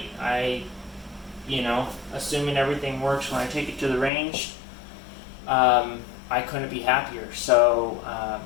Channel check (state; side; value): drops out; right; at 4.1 s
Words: You know, assuming everything works when I take it to the range, I couldn't be happier. So,